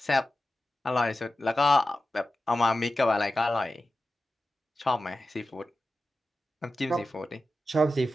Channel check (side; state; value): both; normal; correlation 0.93